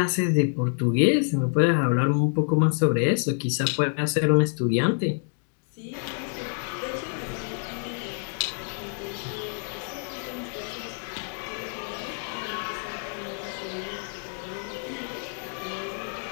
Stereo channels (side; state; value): right; silent; 60 dB below the other